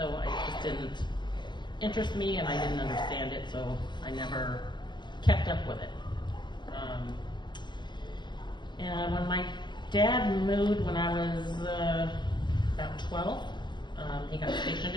it just didn't interest me, and I didn't understand it, so I never kept up with it. And when my dad moved when I was about 12, he got stationed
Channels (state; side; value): late; right; 0.22 ms